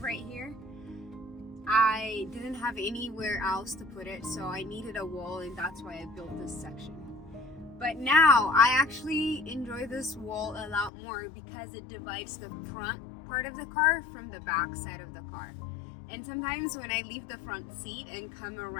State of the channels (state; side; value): drops out; right; at 10.9 s